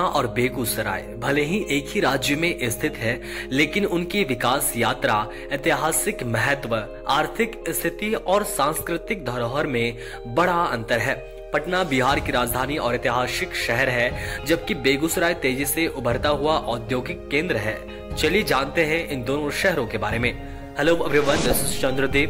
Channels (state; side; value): identical; both; correlation 1.00